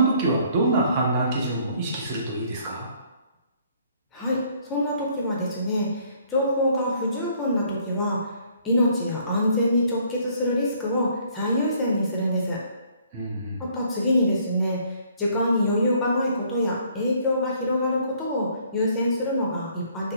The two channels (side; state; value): both; inverted; correlation -0.62